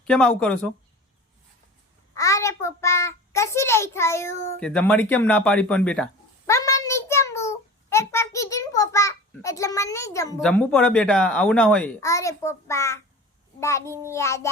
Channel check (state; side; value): normal; both; correlation 0.37